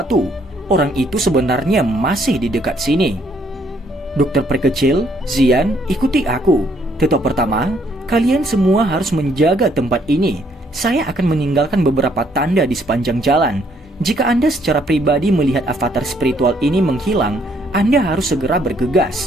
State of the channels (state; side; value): normal; both; correlation 0.68